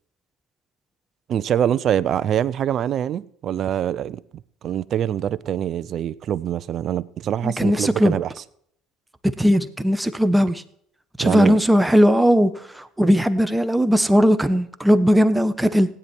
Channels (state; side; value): normal; both; correlation 0.89